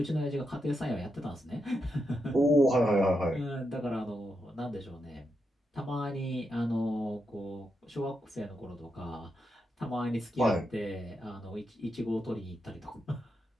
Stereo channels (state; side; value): normal; both; correlation 0.84